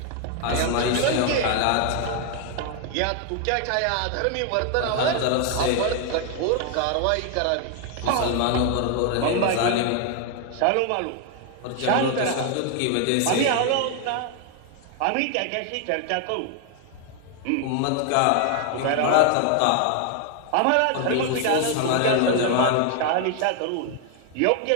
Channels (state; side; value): different; both; correlation 0.01